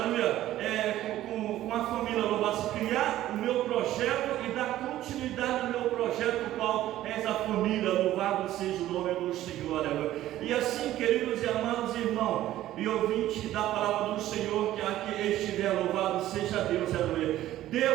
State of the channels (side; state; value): left; quieter; 13.9 dB